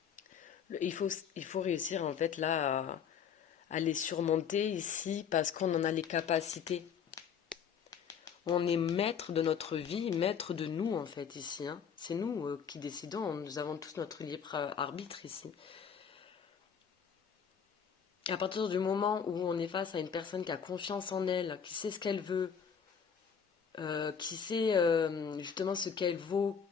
Il faut réussir en fait là à les surmonter ici parce qu'on en a les capacités. On est maître de notre vie, maître de nous en fait ici, hein. C'est nous qui décidons, nous avons tous notre libre arbitre ici. À partir du moment où on est face à une personne qui a confiance en elle, qui sait ce qu'elle veut, qui sait justement ce qu'elle vaut,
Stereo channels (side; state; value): right; quieter; 7.3 dB